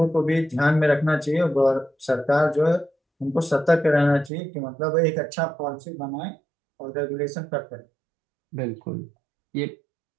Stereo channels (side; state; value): left; drops out; at 4.3 s